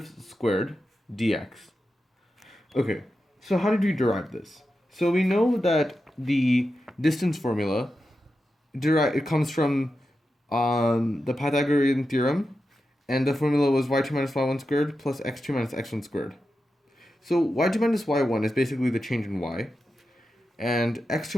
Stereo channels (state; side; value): normal; both; correlation 0.90